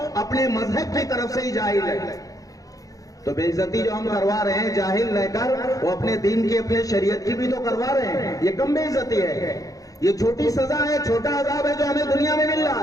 اپنے مذہب کی طرف سے ہی جاہل ہے. تو بے عزتی جو ہم کروا رہے ہیں جاہل رہ کر، وہ اپنے دین کی، اپنے شریعت کی بھی تو کروا رہے ہیں. یہ کم بے عزتی ہے، یہ چھوٹی سزا ہے، چھوٹا عذاب ہے جو ہمیں دنیا میں مل رہا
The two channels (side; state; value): right; late; 0.17 ms